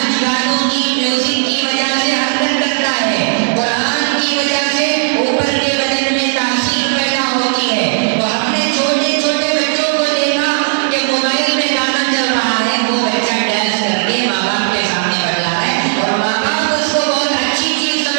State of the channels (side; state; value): left; silent; digital silence